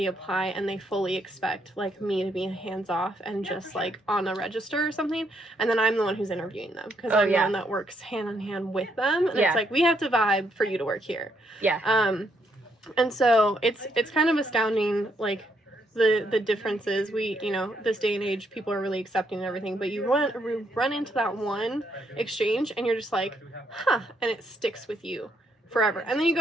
apply and they fully expect like me to be hands off and just like on a register or something, and then I'm the one who's interviewing them because I'm the one that works hand in hand with them, and it's like, we have to vibe for you to work here. And so it's kind of astounding, like, the differences. We, you know, this day and age, people are really accepting and everything, but you run into that one exchange and you're just like, huh, and it sticks with you forever. And then you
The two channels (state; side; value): normal; both; correlation 0.74